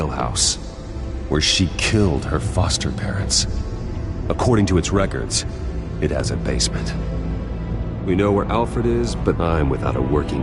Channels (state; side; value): identical; both; correlation 1.00